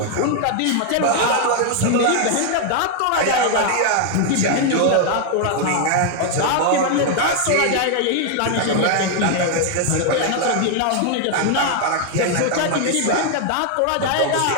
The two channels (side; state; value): both; different; correlation 0.00